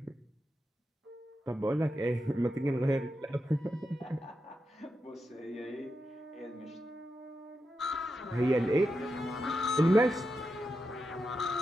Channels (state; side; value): normal; both; correlation 0.87